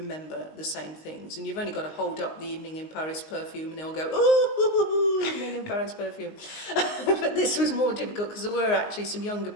the same things. And you've only got to hold up the Evening in Paris perfume and they'll go, ooh, Evening in Paris perfume. But this was more difficult because there were actually some younger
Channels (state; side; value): late; right; 19 ms